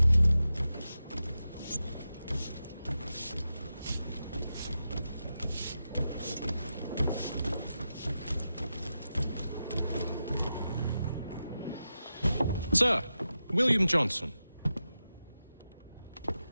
Sir, William Johnson.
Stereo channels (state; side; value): inverted; both; correlation -0.90